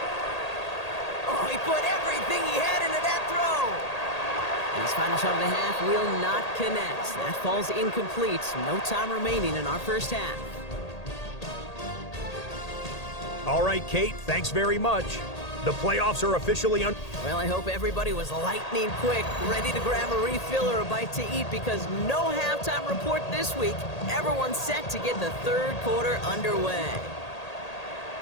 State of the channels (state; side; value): late; right; 1.8 ms